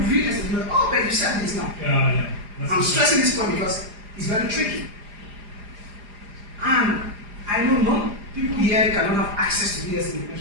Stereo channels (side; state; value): left; late; 4.9 ms